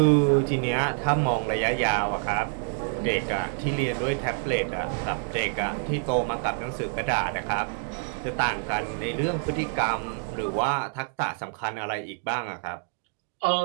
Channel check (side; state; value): left; silent; 60 dB below the other